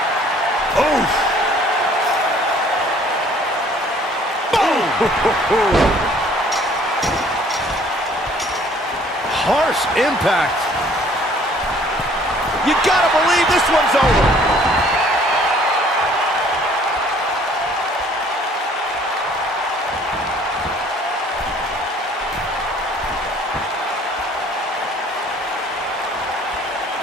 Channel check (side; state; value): both; normal; correlation 0.57